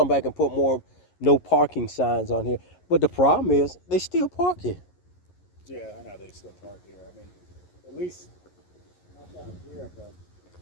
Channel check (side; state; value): right; late; 11 ms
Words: back and put more no parking signs on here. But the problem is, they still park here. Yeah, I know they still park here. I mean, at least not down here, but